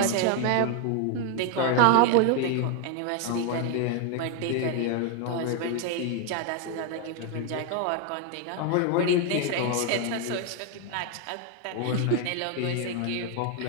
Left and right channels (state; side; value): different; both; correlation 0.01